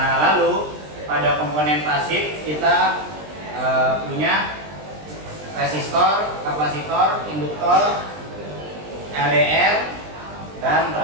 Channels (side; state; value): left; late; 20 ms